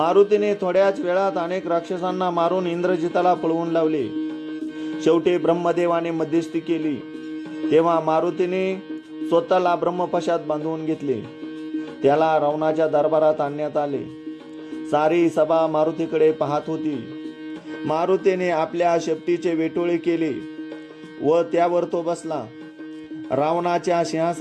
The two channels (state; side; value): identical; both; correlation 1.00